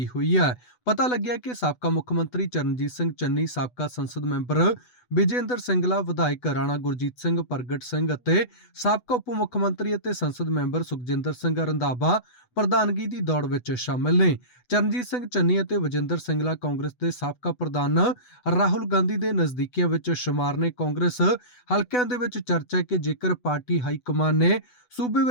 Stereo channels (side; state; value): right; late; 8.1 ms